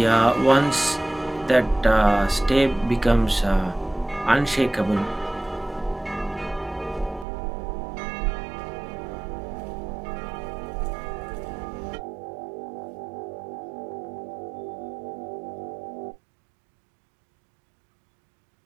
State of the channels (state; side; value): drops out; left; at 7.2 s